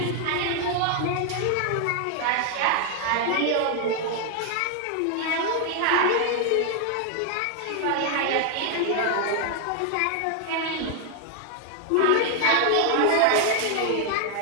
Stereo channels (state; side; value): different; both; correlation 0.00